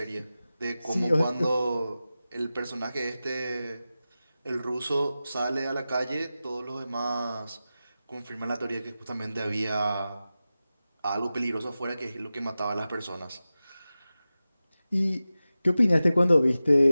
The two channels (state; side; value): inverted; both; correlation -0.95